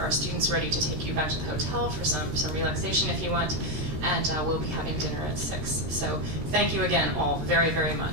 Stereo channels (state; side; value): late; left; 13 ms